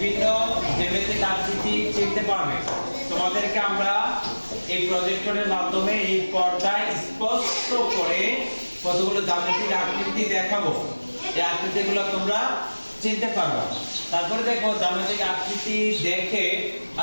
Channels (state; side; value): inverted; both; correlation -1.00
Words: জ্যামিতিক আকৃতি চিনতে পারবে। তোমাদেরকে আমরা এই প্রজেক্টরের মাধ্যমে এই পর্দায় স্পষ্ট করে কতগুলো জ্যামিতিক আকৃতি দেখাবো। এই আকৃতিগুলো তোমরা চিনতে পারবে। তারপরে দেখো জ্যামিতিক আকৃতি দেখে